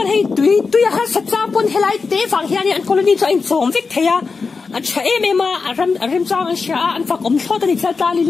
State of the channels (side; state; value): right; quieter; 4.6 dB